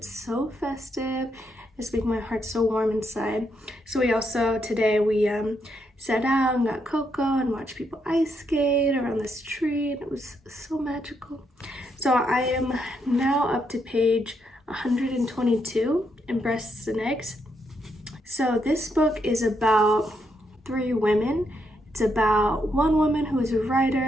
so festive. It's making my heart so warm inside. So we also today we sat out and got cocoa and watched people ice skate around this tree, and it was so magical. So I am now up to page 122 in Breasts and Eggs. So this book is about 3 women. It's about one woman who is a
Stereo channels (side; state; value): both; normal; correlation 0.78